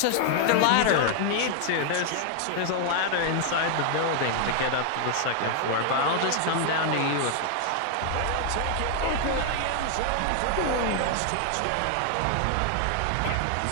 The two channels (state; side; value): different; both; correlation 0.00